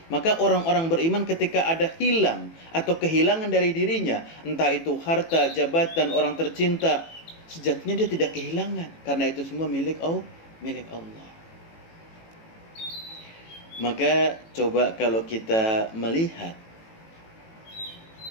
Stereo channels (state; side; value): late; right; 18 ms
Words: Maka orang-orang beriman ketika ada hilang atau kehilangan dari dirinya, entah itu harta, jabatan, orang tercinta, sejatinya dia tidak kehilangan, karena itu semua milik Allah. Maka coba kalau kita melihat,